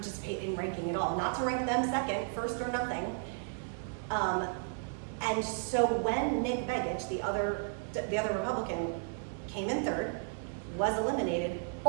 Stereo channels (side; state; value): left; silent; digital silence